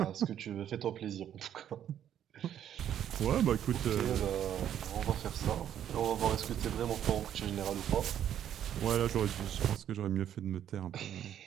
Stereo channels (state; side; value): quieter; left; 10.2 dB